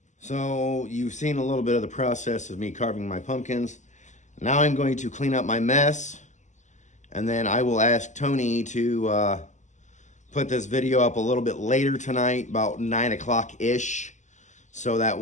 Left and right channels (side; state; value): right; late; 0.34 ms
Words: So you've seen a little bit of the process of me carving my pumpkins. Now I'm going to clean up my mess. And then I will ask Tony to put this video up a little bit later tonight, about 9 o'clock-ish. So that